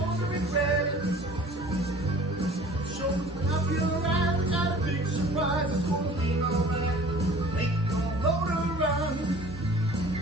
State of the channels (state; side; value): normal; both; correlation 0.47